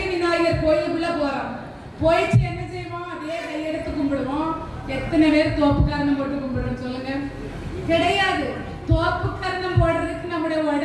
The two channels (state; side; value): identical; both; correlation 1.00